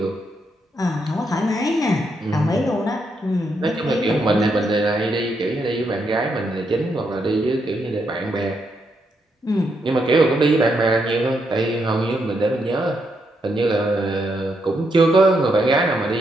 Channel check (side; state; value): both; normal; correlation 0.79